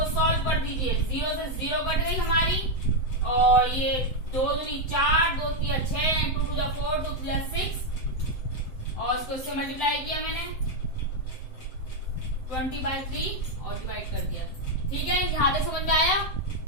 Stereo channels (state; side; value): late; right; 7.7 ms